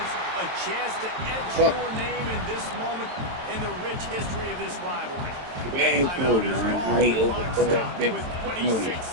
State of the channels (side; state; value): left; late; 23 ms